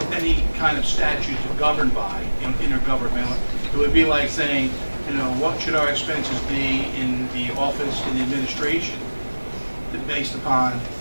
any kind of statute to govern by intergovernmental. It would be like saying, what should our expenses be in the office and the administration based upon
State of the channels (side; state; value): both; inverted; correlation -1.00